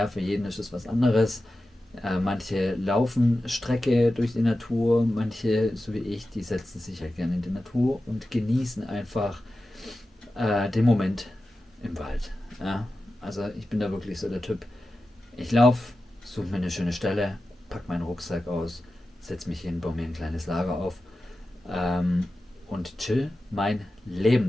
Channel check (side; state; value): both; normal; correlation 0.93